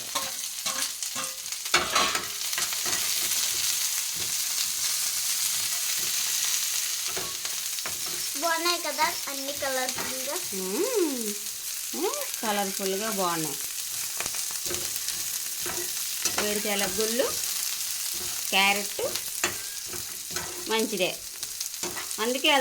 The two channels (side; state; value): both; identical; correlation 1.00